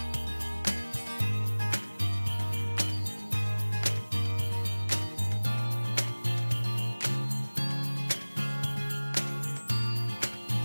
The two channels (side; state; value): both; inverted; correlation -1.00